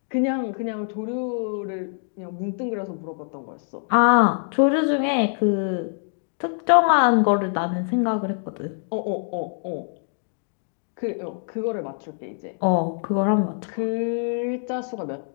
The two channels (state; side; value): silent; right; 62 dB below the other